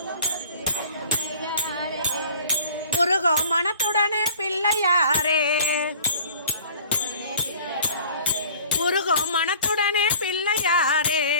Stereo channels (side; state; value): both; inverted; correlation -0.47